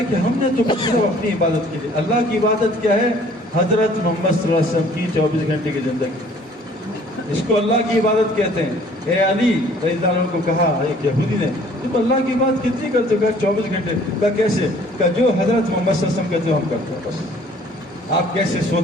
کہ ہم نے تو صرف اپنی عبادت کے لیے. اللہ کی عبادت کیا ہے؟ حضرت محمد صلی اللہ علیہ وسلم کی 24 گھنٹے کی زندگی، اس کو اللہ کی عبادت کہتے ہیں. اے علی رضی اللہ عنہ کو کہا ایک یہودی نے تم اللہ کی بات کتنی کرتے ہو؟ کہا 24 گھنٹے. کہا کیسے؟ کہا جو حضرت محمد صلی اللہ علیہ وسلم کہتے ہو ہم کرتے ہیں بس. آپ کیسے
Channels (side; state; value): both; normal; correlation 0.55